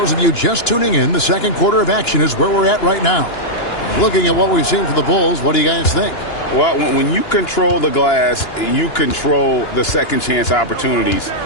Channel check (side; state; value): right; late; 2.9 ms